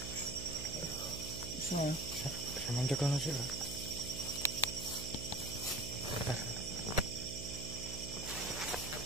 Bisa. Sama cek kalau sih, Pak. Bentar.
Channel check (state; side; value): noise; right; hum, 7 dB below the sound